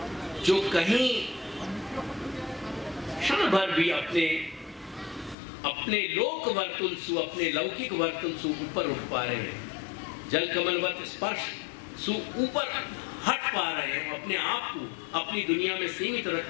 जो कहीं क्षण भर भी अपने लोक वर्तुल सु, अपने लौकिक वर्तुल सु ऊपर उठ पा रहे हैं, जल कमलवत स्पर्श सु ऊपर हट पा रहे हैं, अपने आप को अपनी दुनिया में सीमित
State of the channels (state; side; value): drops out; right; at 5.4 s